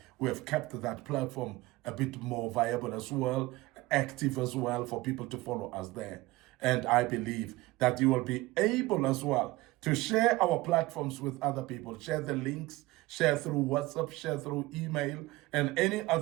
we have kept that platform a bit more viable as well, active as well, for people to follow us there. And I believe that you will be able as well to share our platforms with other people. Share the links, share through WhatsApp, share through email, and any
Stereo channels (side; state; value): left; quieter; 19.6 dB